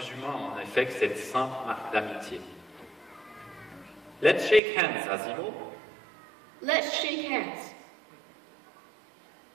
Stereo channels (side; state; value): left; drops out; at 4.6 s